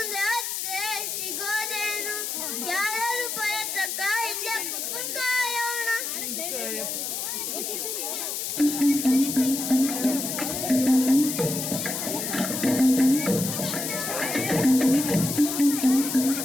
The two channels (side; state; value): left; noise; hiss, 3 dB below the sound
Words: ಹತ್ತೆ ಸಿಗೋದೇನು? ಯಾರು ಪ್ರಯತ್ನಕ್ಕ ಇಲ್ಲೇ ಕುತ್ಕೊಂಡು ಕಾಯೋಣ.